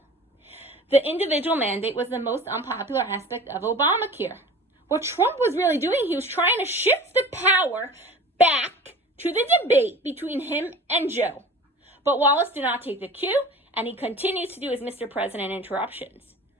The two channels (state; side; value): normal; both; correlation 0.40